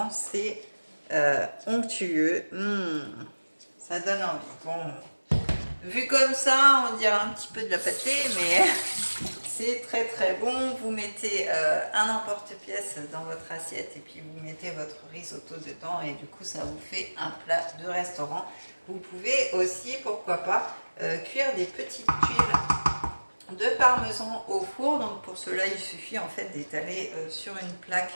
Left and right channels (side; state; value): both; inverted; correlation -1.00